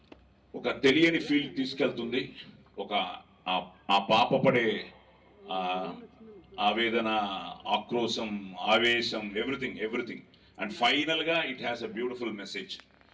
ఒక తెలియని ఫీల్ తీసుకెళ్తుంది. ఒక ఆ పాప పడే ఆవేదన, ఆక్రోశం, ఆవేశం, ఎవ్రీథింగ్. అండ్ ఫైనల్గా it has a beautiful message.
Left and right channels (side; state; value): both; identical; correlation 1.00